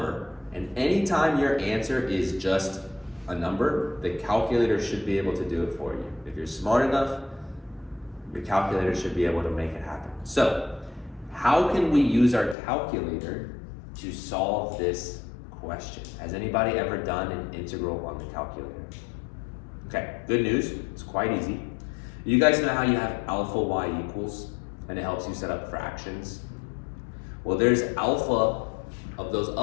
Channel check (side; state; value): right; drops out; at 12.6 s